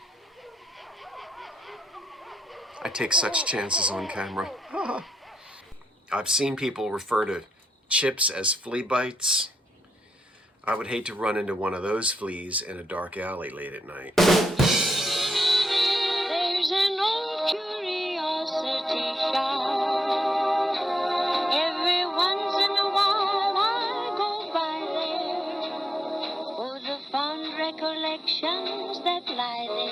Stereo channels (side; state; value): both; normal; correlation 0.82